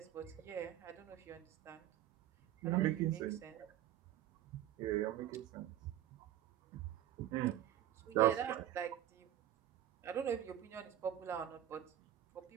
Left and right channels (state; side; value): quieter; left; 12.2 dB